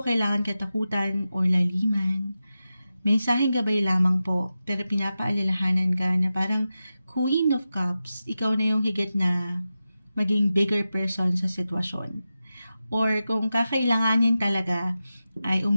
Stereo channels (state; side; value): inverted; both; correlation -0.92